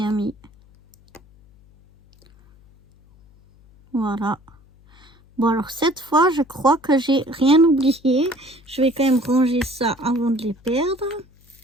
mis. Voilà. Bon, alors cette fois, je crois que j'ai rien oublié. Je vais quand même ranger ça avant de les perdre.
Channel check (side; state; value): left; noise; hum, 28 dB below the sound